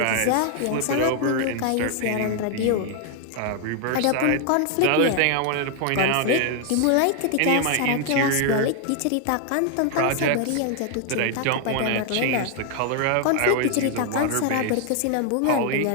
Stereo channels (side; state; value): both; different; correlation 0.00